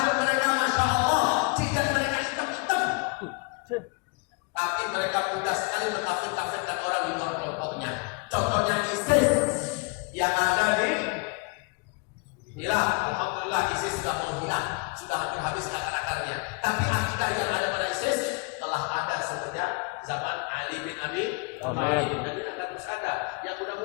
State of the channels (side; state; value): right; quieter; 31.7 dB